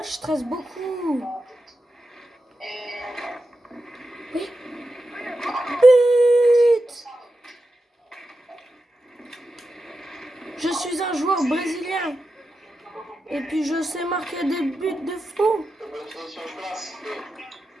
je stresse beaucoup. Oui. But! Je suis un joueur brésilien. Et puis je sais marquer des buts de fou.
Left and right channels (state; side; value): normal; both; correlation 0.90